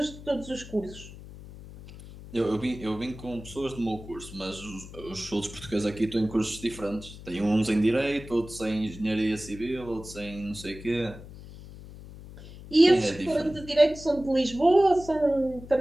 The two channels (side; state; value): left; noise; hum, 15 dB below the sound